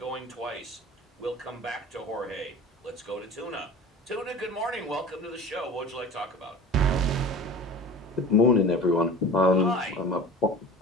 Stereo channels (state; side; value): normal; both; correlation 0.37